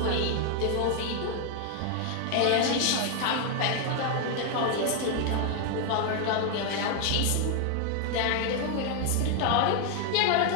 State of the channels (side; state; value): both; different; correlation 0.00